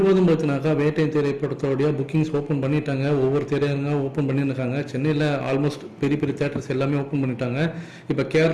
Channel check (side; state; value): both; identical; correlation 1.00